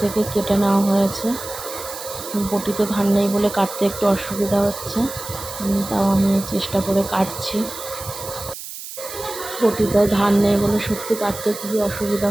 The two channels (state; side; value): noise; right; hiss, 11 dB below the sound